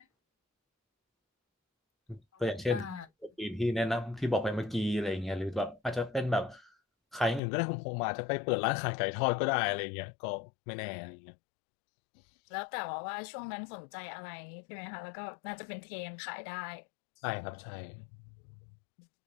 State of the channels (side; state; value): right; drops out; at 7.4 s